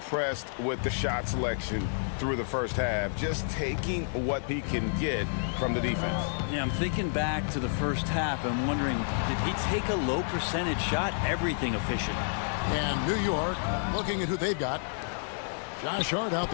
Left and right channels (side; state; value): right; silent; 58 dB below the other